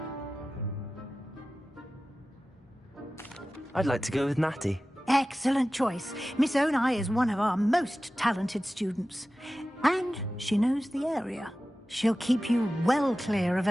I'd like to go with Natty. Excellent choice. Miss Onai is one of our most talented students. And she knows the area. She'll keep you well clear of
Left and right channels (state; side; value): normal; both; correlation 0.95